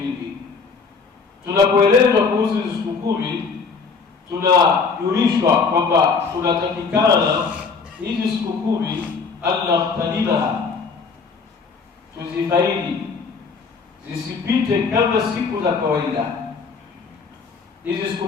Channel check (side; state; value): right; quieter; 5.0 dB